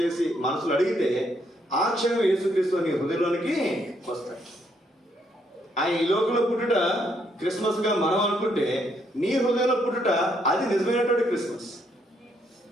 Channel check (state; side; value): normal; both; correlation 0.73